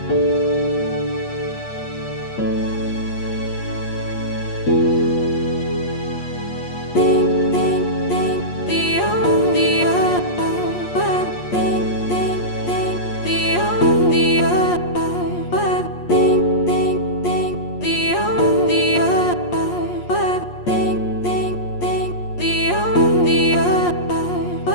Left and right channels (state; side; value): late; right; 8.4 ms